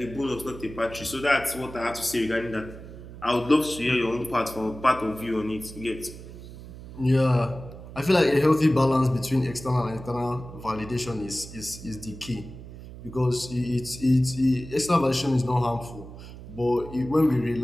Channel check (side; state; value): right; noise; hum, 14 dB below the sound